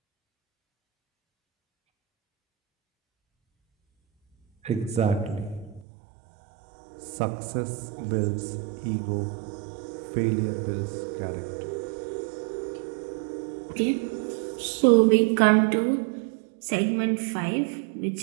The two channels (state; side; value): drops out; left; at 5.9 s